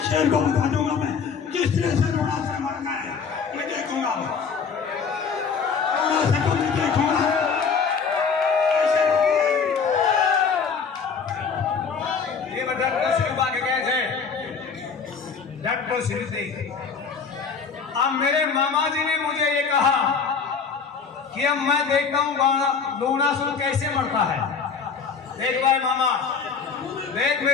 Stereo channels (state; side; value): quieter; right; 5.8 dB